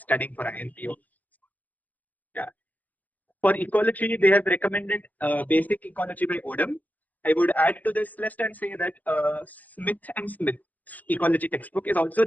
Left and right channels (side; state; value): right; late; 0.080 ms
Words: for INPhO. Yeah. For ecology, they have recommended Basic Ecology by Odom. I would add to this list and say that Smith and Smith's ecology textbook is also